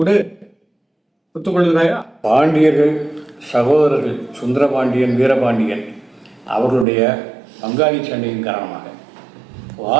விடு, ஒத்துக்கொள்கிறாயா? பாண்டியர்கள் சகோதரர்கள் சுந்தரபாண்டியன், வீரபாண்டியன் அவர்களுடைய பங்காளி சண்டையின் காரணமாக,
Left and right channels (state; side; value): drops out; left; at 6.9 s